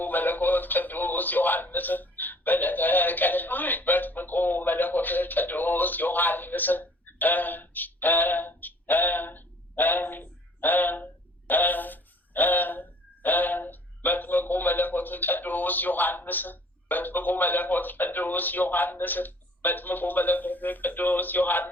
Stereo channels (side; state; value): both; normal; correlation 0.54